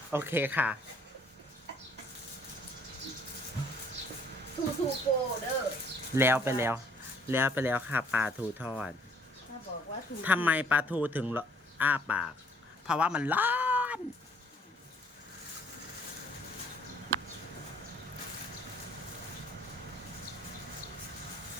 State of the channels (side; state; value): both; normal; correlation 0.59